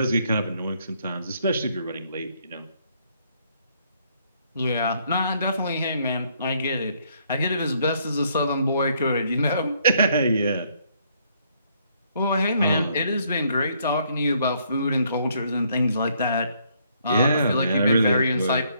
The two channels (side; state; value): both; inverted; correlation -0.69